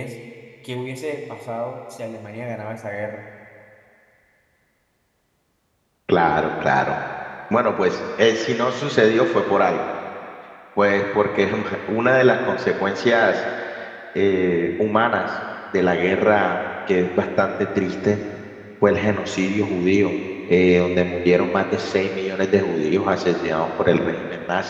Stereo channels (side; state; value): both; identical; correlation 1.00